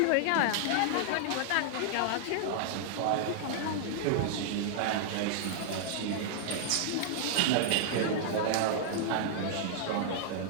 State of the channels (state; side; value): different; both; correlation -0.01